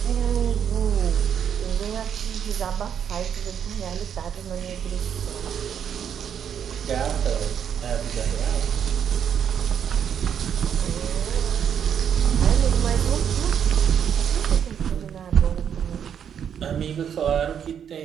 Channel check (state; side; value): quieter; left; 8.4 dB